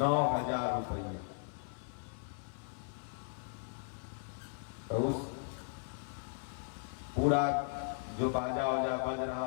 रुपये। तो उस पूरा जो बाजा वाजा बज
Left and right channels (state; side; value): silent; right; 53 dB below the other